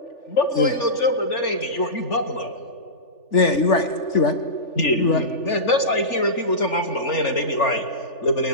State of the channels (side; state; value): right; late; 3.4 ms